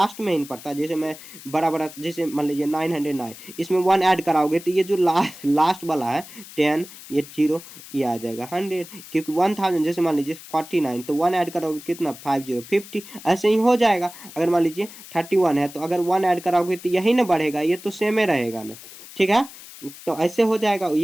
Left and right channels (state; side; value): noise; left; hiss, 17 dB below the sound